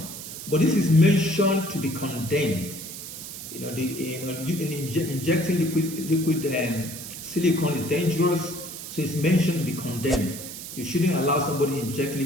but this is mentioned to be condemned. Injecting liquid silicone is dangerous, so it's mentioned to be condemned. You shouldn't allow somebody to inject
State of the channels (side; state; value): right; noise; hiss, 10 dB below the sound